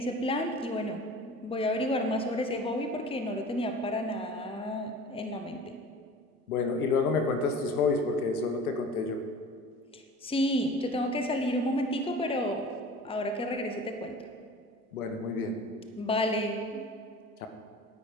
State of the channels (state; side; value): normal; both; correlation 0.41